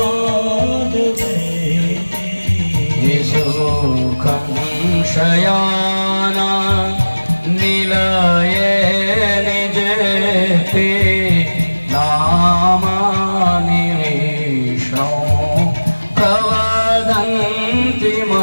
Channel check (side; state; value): both; inverted; correlation -1.00